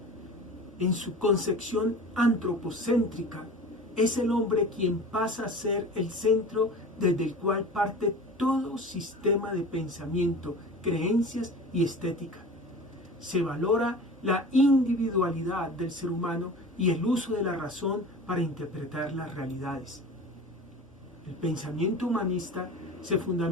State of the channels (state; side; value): normal; both; correlation 0.36